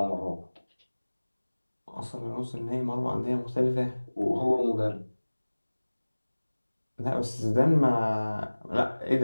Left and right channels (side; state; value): both; inverted; correlation -1.00